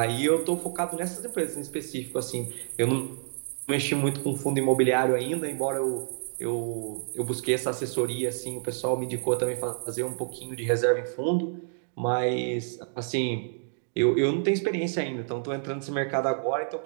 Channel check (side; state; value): left; silent; digital silence